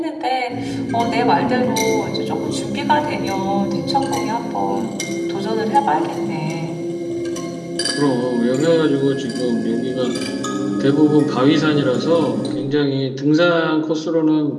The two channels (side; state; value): both; identical; correlation 1.00